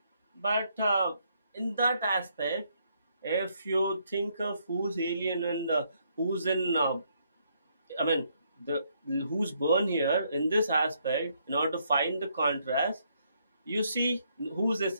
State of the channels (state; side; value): inverted; both; correlation -0.73